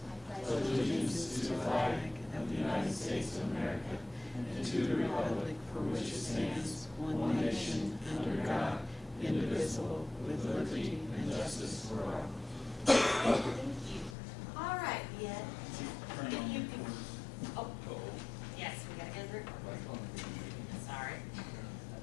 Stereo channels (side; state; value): right; drops out; at 14.2 s